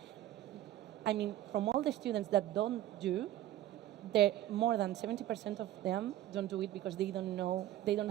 I mean, from all the students that don't do, more than 70% of them don't do it because they don't know, they don't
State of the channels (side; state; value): left; quieter; 13.6 dB